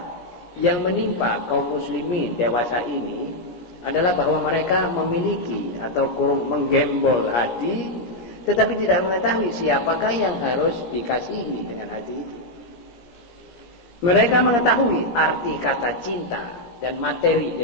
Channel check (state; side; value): late; right; 17 ms